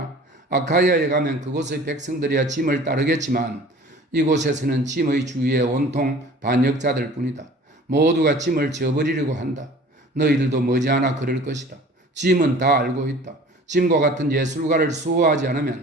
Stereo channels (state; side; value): normal; both; correlation 0.46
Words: 아카이아에 가면 그곳의 백성들이야 짐을 따르겠지만 이곳에서는 짐의 주위에 온통 반역자들 뿐이다. 모두가 짐을 져버리려고 한다. 너희들도 머지않아 그럴 것이다. 짐은 다 알고 있다. 짐과 같은 예술가를 수호하지